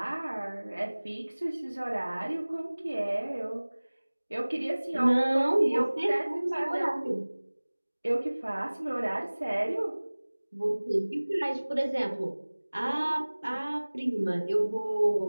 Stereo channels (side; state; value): both; inverted; correlation -1.00